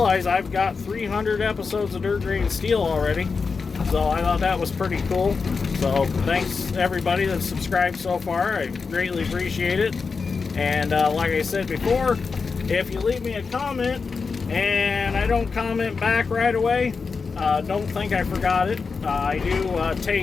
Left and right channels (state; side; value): quieter; right; 4.9 dB